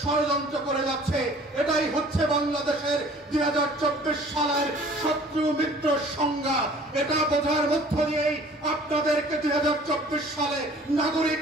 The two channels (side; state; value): both; normal; correlation 0.50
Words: ষড়যন্ত্র করে যাচ্ছে। এটাই হচ্ছে বাংলাদেশের 2024 সালের শত্রু মিত্র সংজ্ঞা। এটা বোঝার মধ্য দিয়েই আপনাদেরকে 2024 সালে নাগরিক